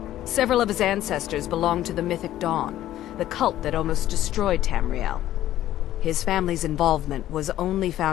Several of his ancestors belonged to the Mythic Dawn, the cult that almost destroyed Tamriel. His family's involvement was only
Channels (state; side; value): quieter; right; 13.3 dB